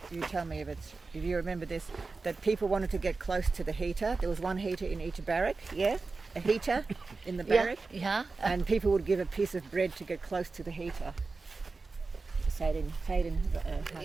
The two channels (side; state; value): left; quieter; 4.0 dB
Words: you tell me if you remember this, that people wanted to get close to the heater. There was one heater in each barrack, a heater in the barrack. Yeah. And people would give a piece of bread to get close to the heater.